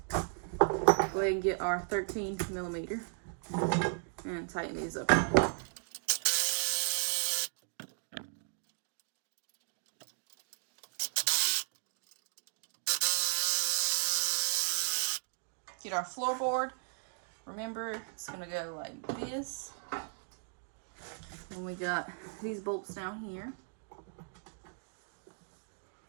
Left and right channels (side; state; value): left; silent; 54 dB below the other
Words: Go ahead and get our 13 millimeter and tighten these up. Get our floorboard. Remember, it's going to go like this. And we got these bolts down here.